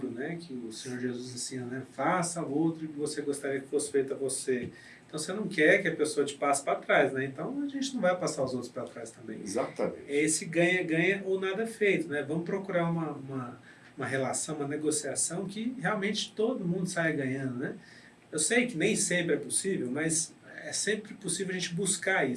né? Que o Senhor Jesus ensina, né? Faça ao outro o que você gostaria que fosse feito a você. Então você não quer que a pessoa te passe para trás, né? Então a gente não vai passar os outros para trás também. Exatamente. É esse ganha-ganha ou nada feito, né? Vamos procurar uma relação, uma negociação que realmente todo mundo saia ganhando, né? Eu sei que nem sempre é possível, mas é sempre possível a gente buscar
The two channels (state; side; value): identical; both; correlation 1.00